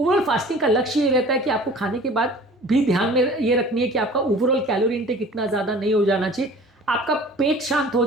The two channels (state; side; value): normal; both; correlation 0.45